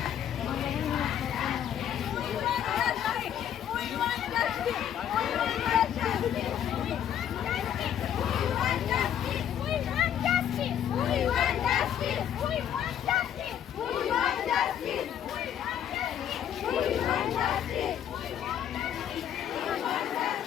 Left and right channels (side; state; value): right; quieter; 9.8 dB